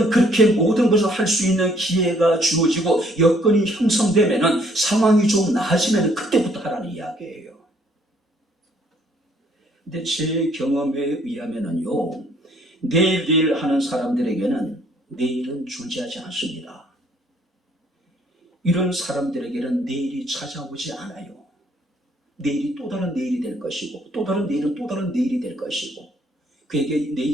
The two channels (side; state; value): both; normal; correlation 0.64